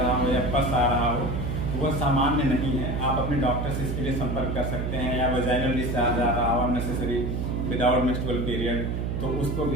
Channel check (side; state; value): right; noise; hum, 1 dB below the sound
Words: हो या पस आ रहा हो तो वह सामान्य नहीं है। आप अपने डॉक्टर से इसके लिए संपर्क कर सकते हैं। या वजाइनल डिस्चार्ज आ रहा हो अननेसेसरी विदाउट मेंस्ट्रुअल पीरियड, तो उसको